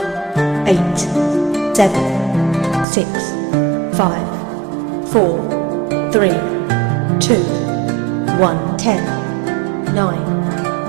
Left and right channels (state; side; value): drops out; left; at 2.9 s